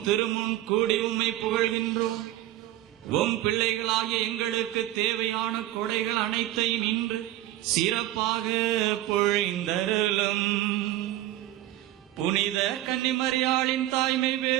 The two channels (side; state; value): left; quieter; 14.6 dB